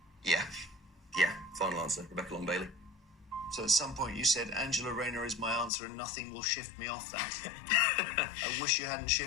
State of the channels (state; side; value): drops out; right; at 5.7 s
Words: Yeah. Yeah, final answer. Rebecca Long Bailey. So at some point you said Angela Rayner is my answer and nothing will shift me off that. I wish you hadn't